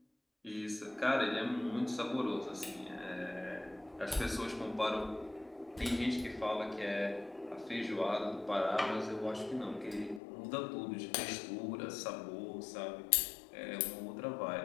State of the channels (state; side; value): drops out; right; at 10.2 s